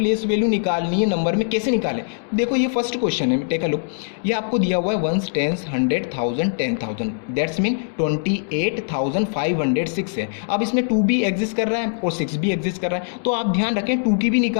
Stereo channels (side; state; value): right; silent; digital silence